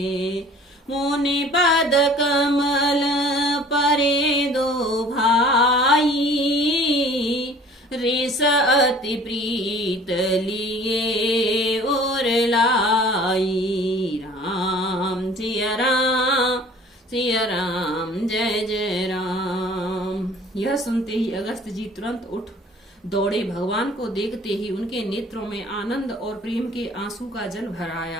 मुनि पद कमल पर यह सुनते ही अगस्त जी तुरंत उठ दौड़े। भगवान को देखते ही उनके नेत्रों में आनंद और प्रेम के आंसू का जल भर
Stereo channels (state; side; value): normal; both; correlation 0.49